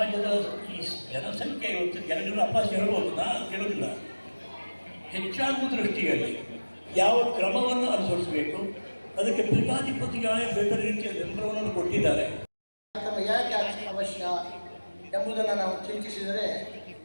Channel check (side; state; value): both; inverted; correlation -1.00